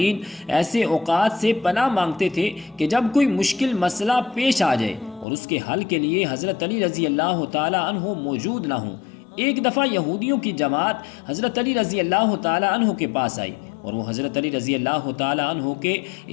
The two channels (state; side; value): drops out; right; at 5.2 s